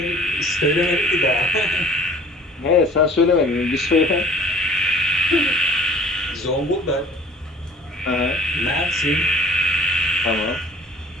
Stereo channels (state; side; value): normal; both; correlation 0.50